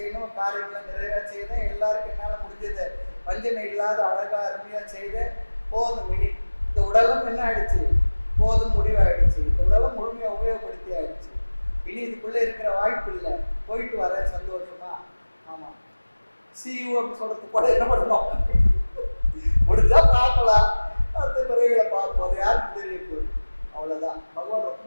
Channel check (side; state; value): both; inverted; correlation -1.00